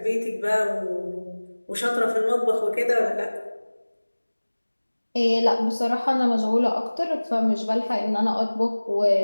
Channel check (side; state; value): both; inverted; correlation -1.00